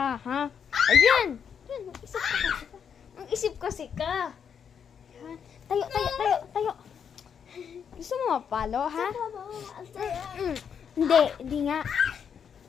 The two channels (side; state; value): right; quieter; 7.4 dB